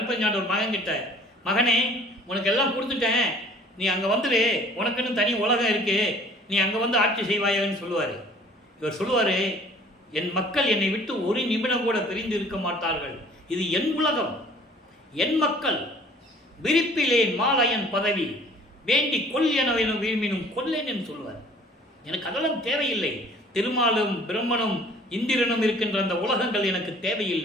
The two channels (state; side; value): normal; both; correlation 0.52